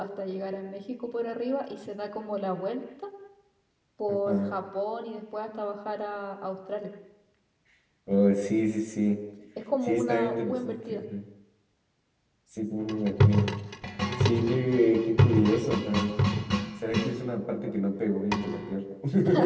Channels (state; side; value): identical; both; correlation 1.00